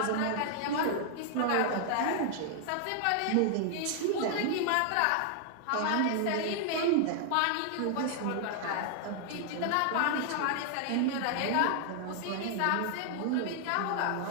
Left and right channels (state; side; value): different; both; correlation 0.00